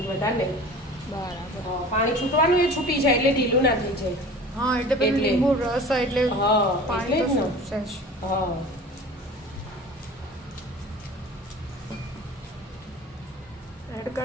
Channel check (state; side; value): normal; both; correlation 0.40